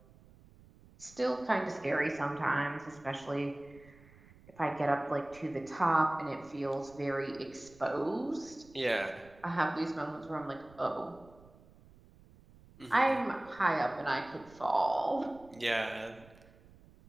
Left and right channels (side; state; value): right; noise; rumble, 24 dB below the sound